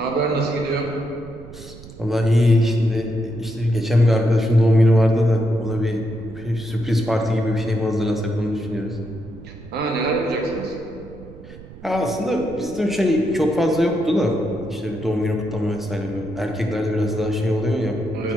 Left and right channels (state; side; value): noise; right; rumble, 17 dB below the sound